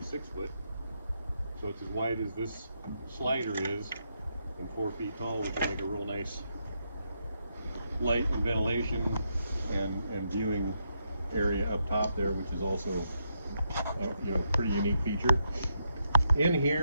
6 foot. So it's as wide as this slider is and 4 feet tall, which will make a real nice light and ventilation and viewing area up top there, which is also a pretty unique feature. In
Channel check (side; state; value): both; inverted; correlation -0.80